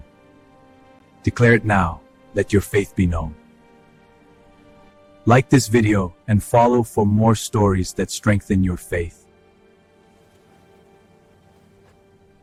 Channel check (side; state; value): both; identical; correlation 1.00